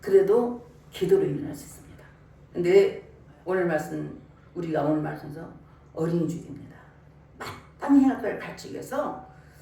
기도로 일어날 수 있습니다. 근데 오늘 말씀, 우리가 오늘 말씀에서 어린 죽입니다. 마땅히 할 걸 가르치기 위해서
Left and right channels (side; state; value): both; identical; correlation 1.00